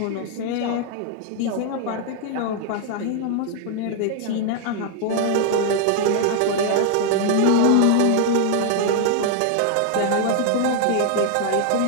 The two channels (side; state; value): both; different; correlation 0.00